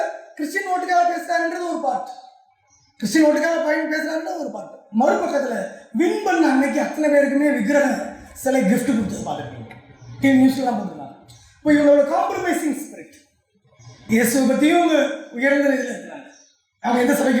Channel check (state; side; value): identical; both; correlation 1.00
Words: கிறிஸ்டியன் ஓட்டுக்காக பேசுகிறாருன்றது ஒரு பார்ட், கிறிஸ்டியன் ஓட்டுக்காக பாயிண்ட் பேசுகிறாருன்றது ஒரு பார்ட். மறுபக்கத்தில் வின் பண்ண அன்னைக்கு அத்தனை பேருக்குமே விக்கிரக சிலை கிஃப்ட் கொடுத்தது பார்த்துருக்கீங்க, டிவி நியூஸ்லாம் போட்டுருக்காங்க. இப்போ இவங்களோட காம்ப்ரமைசிங் ஸ்பிரிட். இயேசுவை பற்றியும் அவங்க உயர்ந்த இதில் இருக்கிறாங்க. அவங்க எந்த